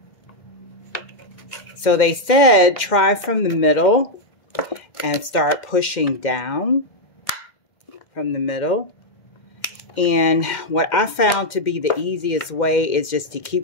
So they said try from the middle and start pushing down from the middle. And what I found to be the easiest way is just to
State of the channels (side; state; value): right; late; 2.1 ms